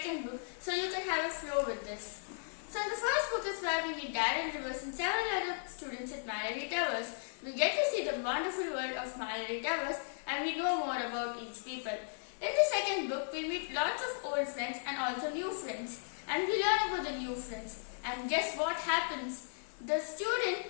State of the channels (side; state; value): right; silent; digital silence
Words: book so you can have a flow with this. So in the first book is where we meet Darren Rivers and several other students at Malory Towers. We get to see the wonderful world of Malory Towers and we know more about each people. In the second book, we meet lots of old friends and also new friends. And we learn about the new friends. And guess what happens? The student